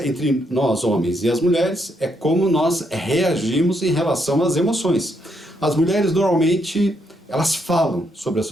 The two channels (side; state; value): both; normal; correlation 0.76